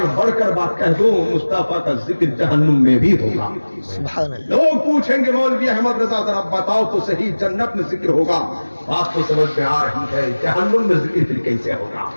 बढ़कर बात कह दूं, मुस्तफा का जिक्र जहन्नुम में भी होगा। सुभानअल्लाह। लोग पूछेंगे मौलवी अहमद रजा जरा बताओ तो सही, जन्नत में जिक्र होगा, बात तो समझ में आ रही है, जहन्नुम में जिक्र फिर कैसे होगा?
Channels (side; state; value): both; inverted; correlation -1.00